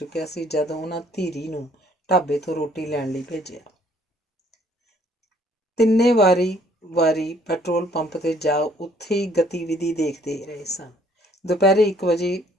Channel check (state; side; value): normal; both; correlation 0.62